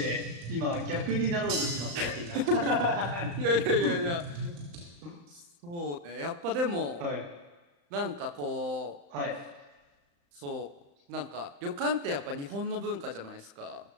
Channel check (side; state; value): left; late; 35 ms